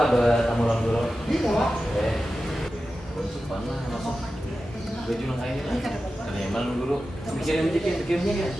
bertamu lang dulu. Iya, Pak. Mana masuk baju lang kain lah. Kan emang guru. Pikirin pikirnya kan.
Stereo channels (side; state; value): both; normal; correlation 0.93